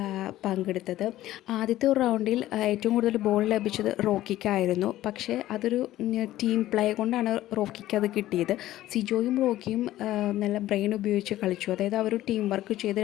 പങ്കെടുത്തത്. ആദ്യത്തെ ഒരു റൗണ്ടിൽ ഏറ്റവും കൂടുതൽ ബോൾ ലഭിച്ചത് റോക്കിക്കായിരുന്നു. പക്ഷേ അതൊരു ടീം പ്ലേ കൊണ്ടാണ് റോക്കിക്ക് അത് കിട്ടിയത്. സിജോയും റോക്കിയും നല്ല ബ്രെയിൻ ഉപയോഗിച്ച് കളിച്ചു. അതായത് അവർ ടീം വർക്ക് ചെയ്ത്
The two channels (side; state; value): right; quieter; 14.6 dB